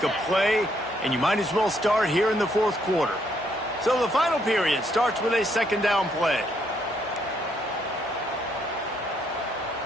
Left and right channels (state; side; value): normal; both; correlation 0.72